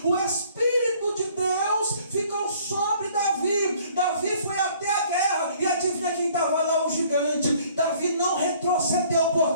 o Espírito de Deus ficou sobre Davi. Davi foi até a guerra e adivinha quem estava lá? O gigante. Davi não retrocedeu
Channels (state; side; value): inverted; both; correlation -0.58